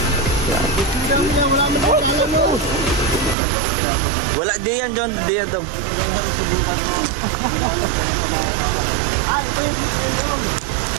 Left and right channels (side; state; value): left; drops out; at 3.4 s